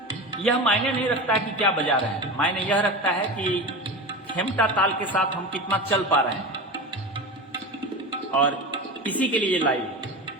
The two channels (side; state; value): both; normal; correlation 0.26